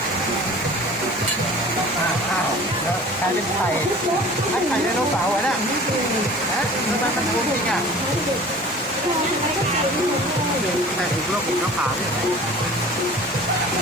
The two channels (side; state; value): both; normal; correlation 0.43